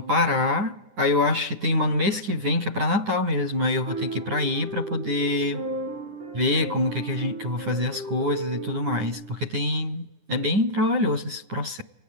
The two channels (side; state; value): left; late; 9.9 ms